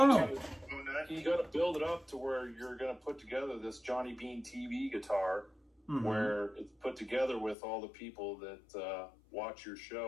bone nut? You got to build it up to where you're going to put together this Johnny Bean TV guitar, Mm-hmm. where it's put together with all the people that watch your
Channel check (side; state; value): right; drops out; at 7.6 s